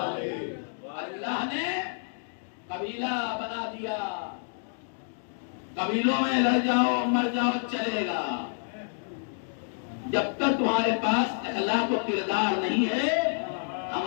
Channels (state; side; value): silent; right; digital silence